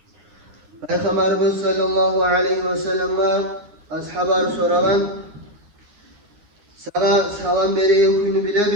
Peygamberimiz sallallahu aleyhi ve sellem'e ashabarı soragan, sana salam beregen kuyunu bile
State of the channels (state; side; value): late; left; 9.7 ms